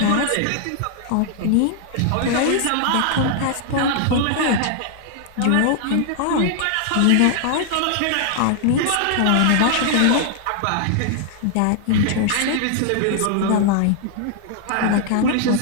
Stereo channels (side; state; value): both; different; correlation 0.00